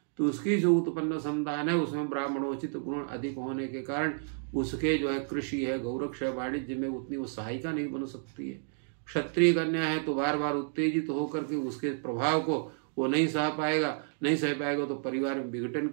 तो उसकी जो उत्पन्न संतान है उसमें ब्राह्मणोचित गुण अधिक होने के कारण उसके जो है कृषि है, गौरक्ष है, वाणिज्य में उतनी वो सहायिका नहीं बन सकती है। क्षत्रिय कन्या है तो बार बार उत्तेजित होकर के उसके प्रभाव को वो नहीं सह पाएगा तो परिवार में विघटन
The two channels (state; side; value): silent; left; digital silence